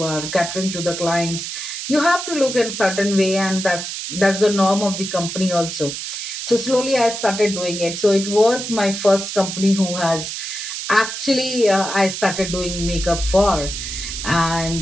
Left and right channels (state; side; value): noise; right; hiss, 6 dB below the sound